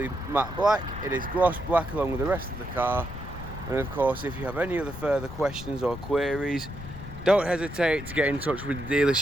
matte black, it is gloss black along with the rest of the car. And of course, if you have any other further questions or queries, don't hesitate to get in touch with the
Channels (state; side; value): noise; left; rumble, 11 dB below the sound